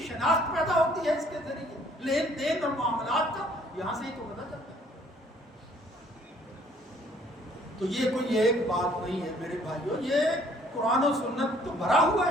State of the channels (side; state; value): both; normal; correlation 0.60